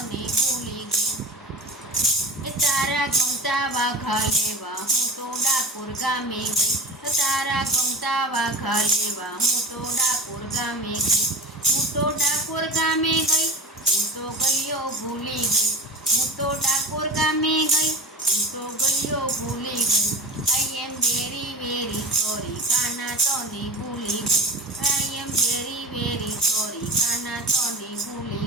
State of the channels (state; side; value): normal; both; correlation 0.31